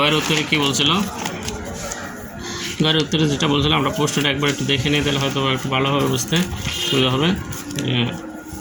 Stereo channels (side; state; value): both; identical; correlation 1.00